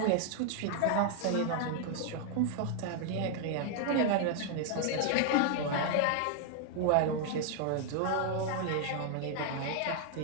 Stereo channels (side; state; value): both; different; correlation 0.00